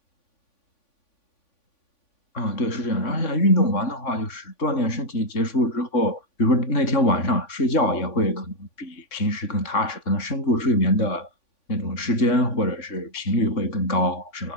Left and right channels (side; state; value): right; late; 3.5 ms